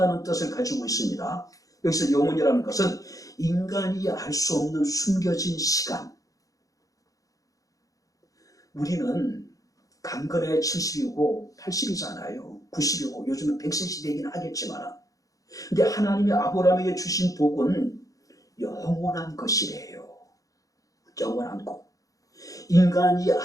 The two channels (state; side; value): late; right; 0.17 ms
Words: 뜻을 가지고 있습니다. 여기서 영원이라는 것은 인간이 알 수 없는 숨겨진 시간. 우리는 강건해 70이고 80이잖아요. 90이고 요즘은 100세 시대이긴 하겠지만, 근데 하나님이 아브라함에게 주신 복은 영원한 것이래요. 영원한 것. 인간이